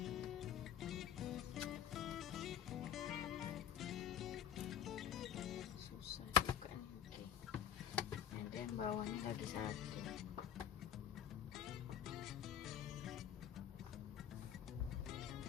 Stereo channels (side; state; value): right; quieter; 9.3 dB